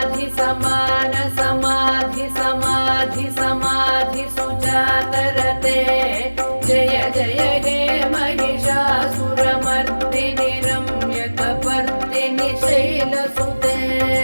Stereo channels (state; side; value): inverted; both; correlation -1.00